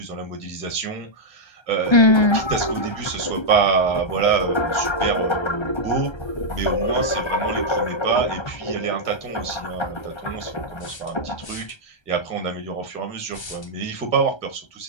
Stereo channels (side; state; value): right; late; 1.3 ms